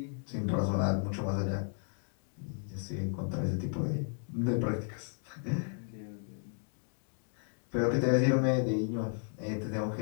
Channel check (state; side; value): silent; right; 55 dB below the other